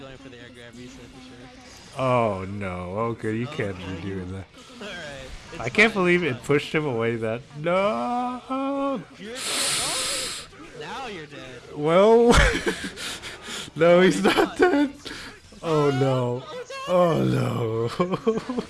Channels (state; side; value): identical; both; correlation 1.00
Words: for the air grab reset for sure. Oh no, okay, you can't be doing that. Alright. I can't believe it pushed him away that... No! Now you're dead. Well... No, he's not dead! Oh no. Oh no.